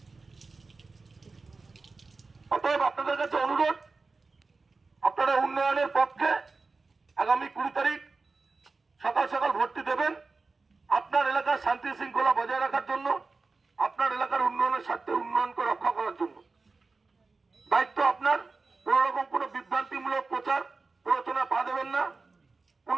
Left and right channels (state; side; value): quieter; left; 3.9 dB